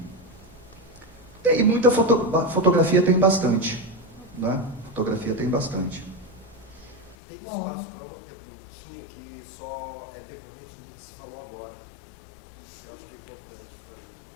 Tem muita fotografia, tem bastante, né? Fotografia tem bastante. Tem espaço para uma perguntinha que só é decorrente do que se falou agora. Eu acho que é importante para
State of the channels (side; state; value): right; drops out; at 7.2 s